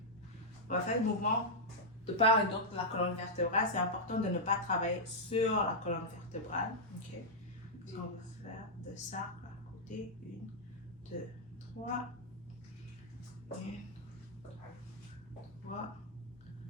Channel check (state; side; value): normal; both; correlation -0.06